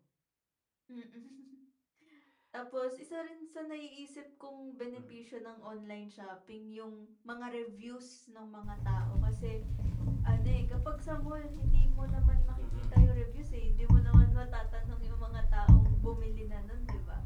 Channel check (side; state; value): both; identical; correlation 1.00